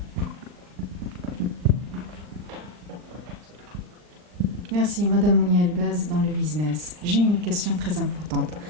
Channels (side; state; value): left; late; 39 ms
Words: Merci, Madame Mouni Elbaz, dans le business. J'ai une question très importante.